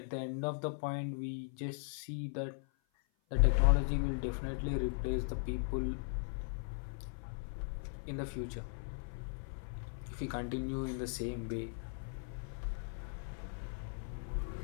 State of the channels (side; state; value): right; silent; 52 dB below the other